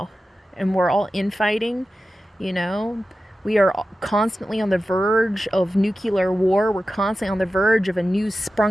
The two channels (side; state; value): both; normal; correlation 0.93